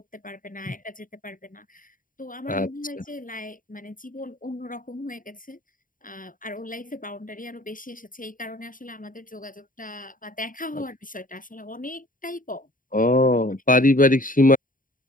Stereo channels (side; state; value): right; late; 0.39 ms